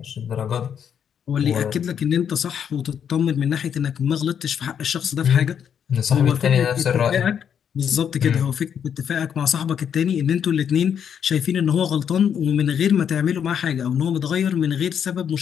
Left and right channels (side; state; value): right; quieter; 8.2 dB